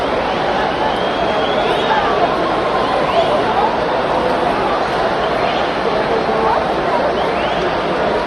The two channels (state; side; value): noise; right; hum, 27 dB below the sound